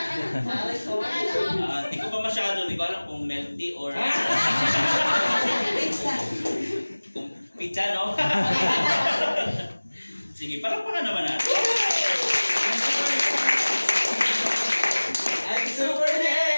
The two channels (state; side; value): inverted; both; correlation -1.00